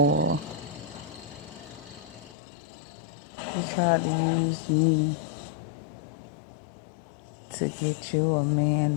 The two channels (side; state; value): right; drops out; at 2.3 s